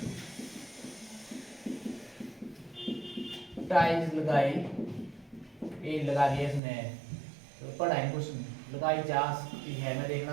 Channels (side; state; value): left; drops out; at 6.6 s